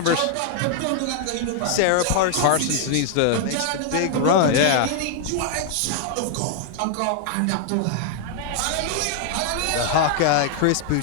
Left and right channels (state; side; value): different; both; correlation 0.00